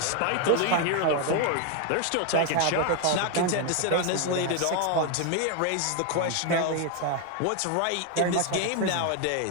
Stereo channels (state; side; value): different; both; correlation 0.01